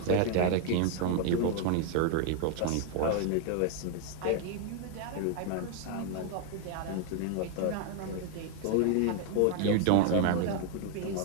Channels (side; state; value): both; different; correlation 0.01